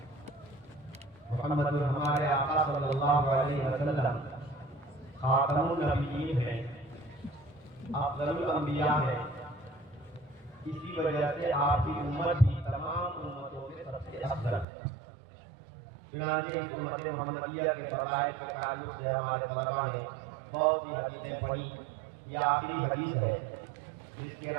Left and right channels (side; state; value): left; drops out; at 14.7 s